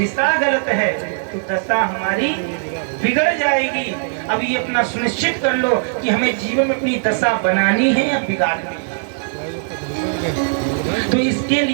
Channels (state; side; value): silent; left; digital silence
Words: गलत है तो दशा हमारी बिगड़ जाएगी। अब ये अपना सुनिश्चित कर लो कि हमें जीवन में अपनी दशा बनानी है या बिगाड़नी है। तो इसके